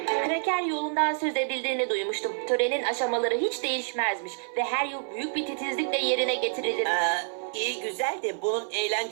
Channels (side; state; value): left; silent; 59 dB below the other